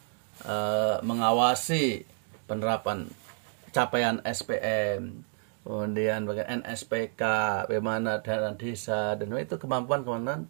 mengawasi penerapan capaian SPM, kemudian bagian NSPK, bagaimana dana desa, dan itu kemampuan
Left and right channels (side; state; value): left; silent; 58 dB below the other